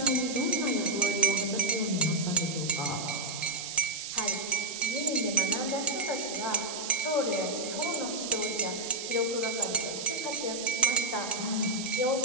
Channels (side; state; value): right; noise; hiss, 6 dB below the sound